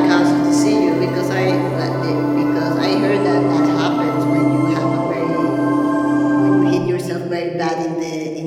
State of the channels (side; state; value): both; identical; correlation 1.00